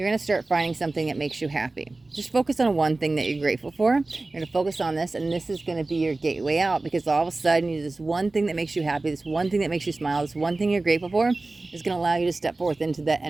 going to start finding something that makes you happy. Just focus on one thing that you're grateful for. You're going to focus on this, and this is going to be your gateway out, because all of a sudden, this one thing that makes you happy, this one thing that makes you smile, this one thing you're grateful for is going to allow you to step forth into that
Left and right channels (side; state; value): left; quieter; 3.2 dB